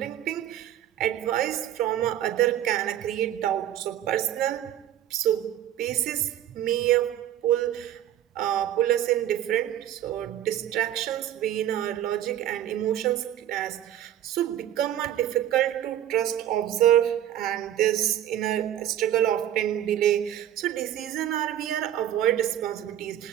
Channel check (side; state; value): left; quieter; 11.6 dB